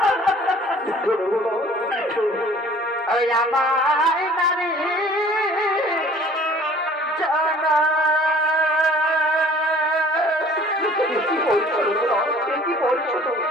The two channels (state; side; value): normal; both; correlation 0.51